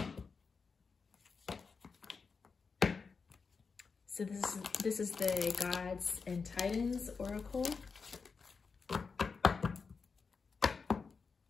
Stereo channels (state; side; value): quieter; right; 5.0 dB